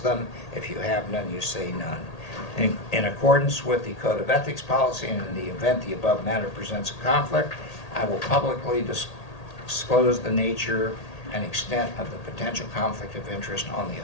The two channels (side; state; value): right; late; 1.8 ms